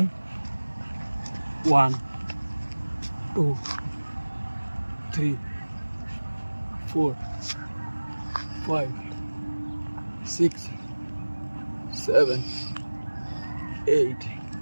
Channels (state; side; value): inverted; both; correlation -1.00